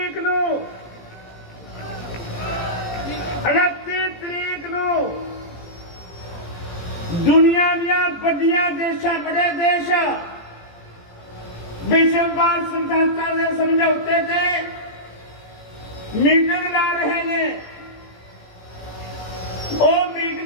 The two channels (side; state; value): right; late; 17 ms